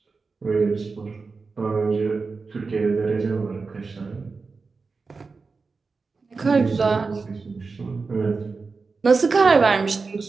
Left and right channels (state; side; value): quieter; left; 4.4 dB